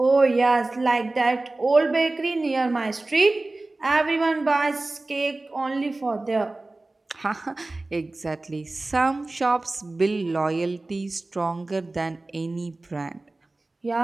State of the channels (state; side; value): quieter; left; 3.0 dB